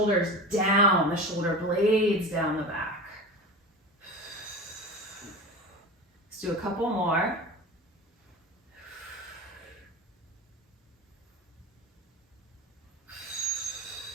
down, the shoulder blades down the back. Let's do a couple more.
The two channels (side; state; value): both; normal; correlation 0.31